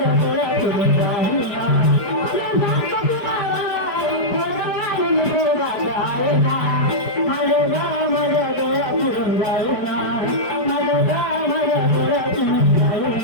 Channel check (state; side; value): late; right; 4.6 ms